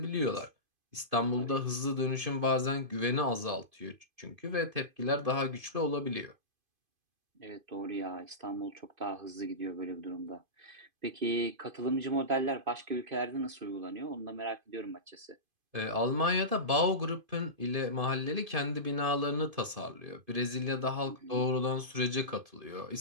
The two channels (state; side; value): late; left; 2.5 ms